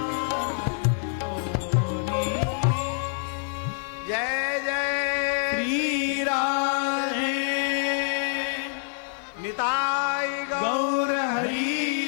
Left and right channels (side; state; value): right; silent; digital silence